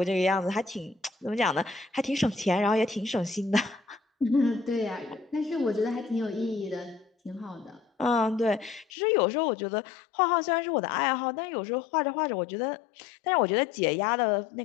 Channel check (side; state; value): right; drops out; at 8.8 s